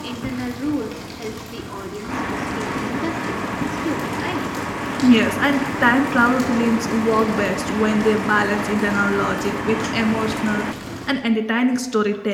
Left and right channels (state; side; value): identical; both; correlation 1.00